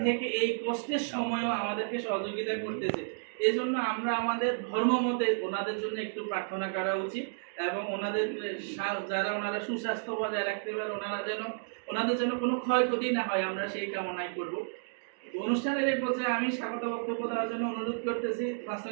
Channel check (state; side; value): silent; left; digital silence